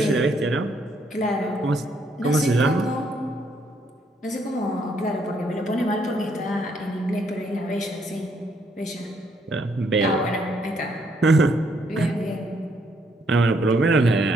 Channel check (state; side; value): normal; both; correlation 0.72